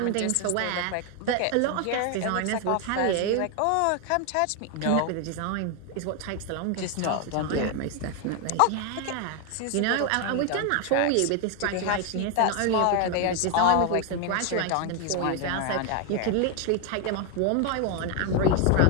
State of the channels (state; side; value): different; both; correlation 0.01